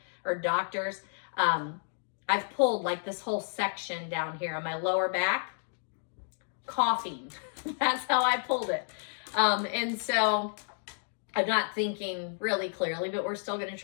or doctors. I've pulled like this whole section down here on my lower back, coughing. That's how I pulled it. And so I'm not thinking really clearly, but we're still going to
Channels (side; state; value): right; silent; digital silence